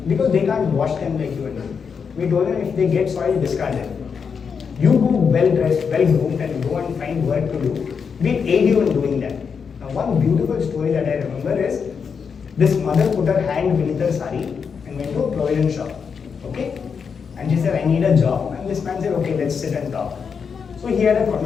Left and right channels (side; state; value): right; quieter; 6.2 dB